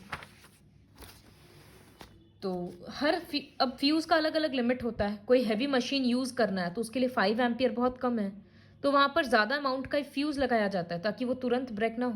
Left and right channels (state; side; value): identical; both; correlation 1.00